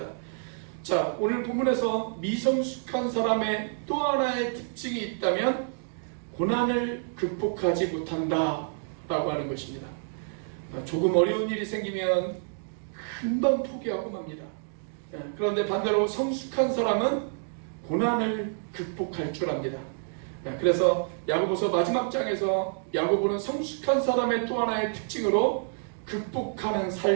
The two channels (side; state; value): left; silent; digital silence